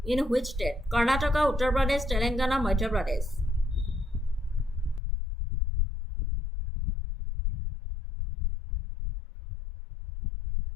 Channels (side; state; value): right; drops out; at 5.0 s